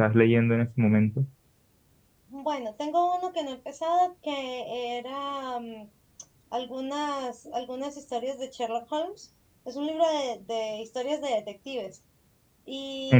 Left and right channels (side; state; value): both; identical; correlation 1.00